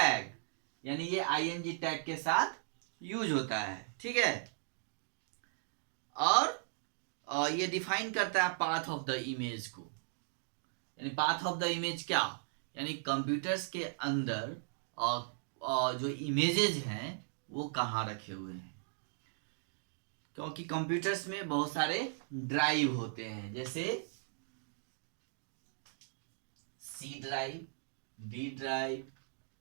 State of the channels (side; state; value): left; silent; digital silence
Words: यानी ये img टैग के साथ यूज होता है। ठीक है। और ये डिफाइन करता है पाथ ऑफ द इमेज को। यानी पाथ ऑफ द इमेज क्या, यानी कंप्यूटर्स के अंदर जो इमेजेस हैं वो कहाँ रखे हुए हैं। क्योंकि कंप्यूटर्स में बहुत सारे ड्राइव होते हैं, जैसे C drive, D drive,